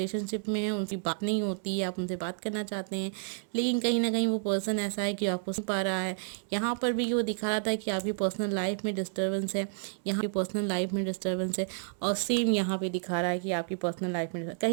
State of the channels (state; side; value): silent; left; 57 dB below the other